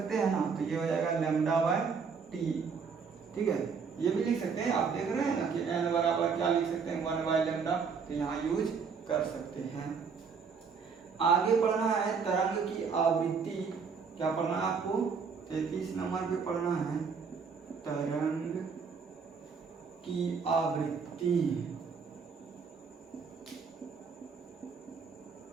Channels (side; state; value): left; quieter; 5.7 dB